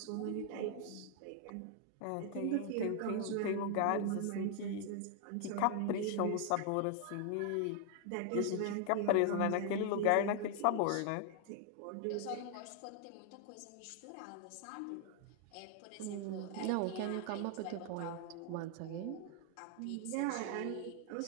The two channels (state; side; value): different; both; correlation 0.00